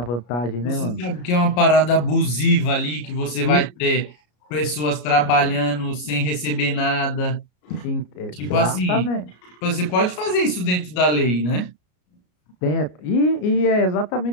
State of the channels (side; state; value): right; late; 33 ms